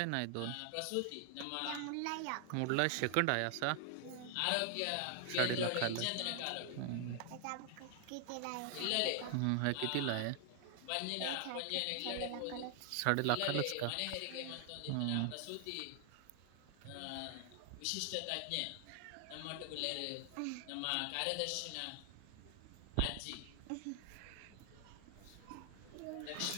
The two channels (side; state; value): both; different; correlation 0.00